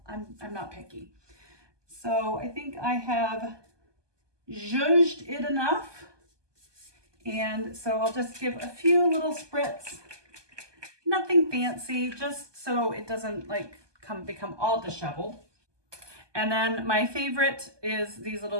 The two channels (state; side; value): late; left; 1.2 ms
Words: picky. So I think I have zhuzhed it enough. And so I'll just give a few little spritz, nothing fancy, just so it doesn't like become all disheveled. And then my favorite is these